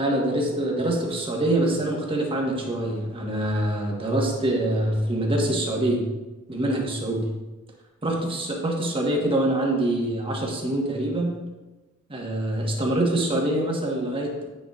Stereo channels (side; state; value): both; normal; correlation 0.54